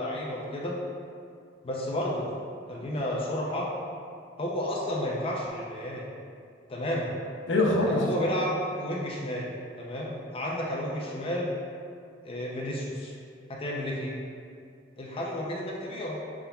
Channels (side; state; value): both; normal; correlation 0.34